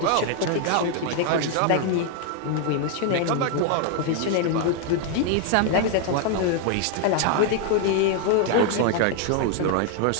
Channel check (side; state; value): both; different; correlation 0.00